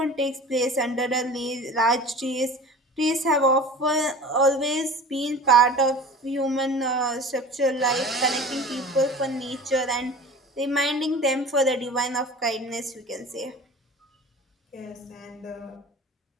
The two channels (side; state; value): both; normal; correlation 0.39